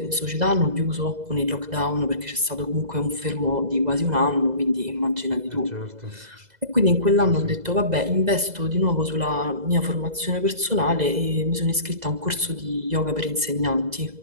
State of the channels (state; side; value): late; left; 2.0 ms